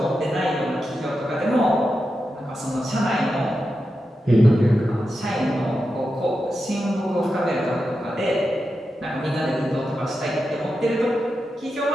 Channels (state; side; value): normal; both; correlation 0.89